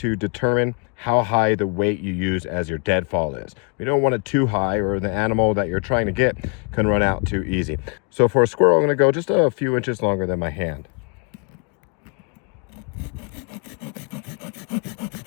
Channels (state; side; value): quieter; right; 37.3 dB